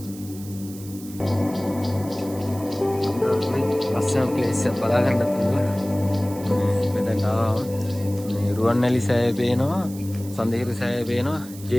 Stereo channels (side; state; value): right; noise; hiss, 17 dB below the sound